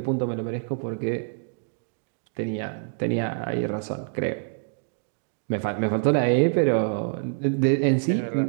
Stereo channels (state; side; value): silent; left; digital silence